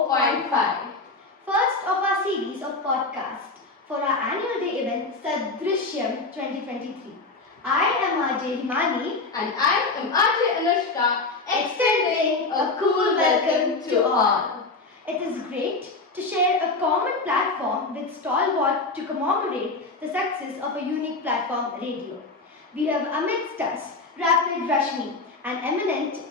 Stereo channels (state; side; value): quieter; right; 3.6 dB